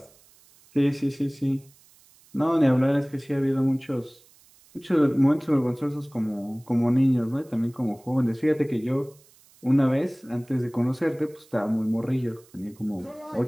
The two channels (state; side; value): noise; right; hiss, 29 dB below the sound